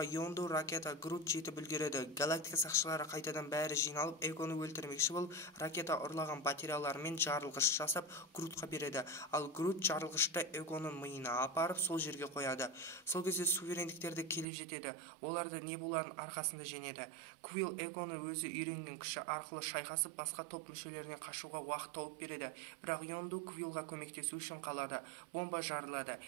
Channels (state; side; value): drops out; left; at 14.5 s